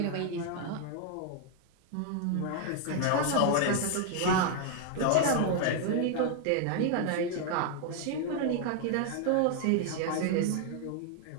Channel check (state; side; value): different; both; correlation 0.00